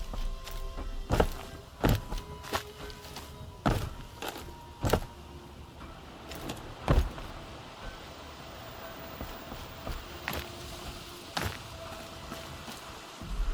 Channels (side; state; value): both; identical; correlation 1.00